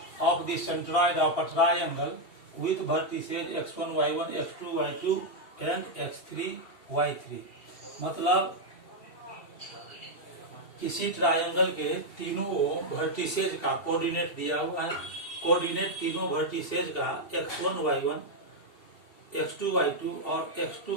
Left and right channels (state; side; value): late; right; 2.7 ms